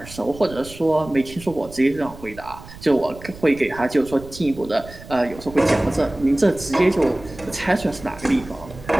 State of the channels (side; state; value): right; noise; rumble, 17 dB below the sound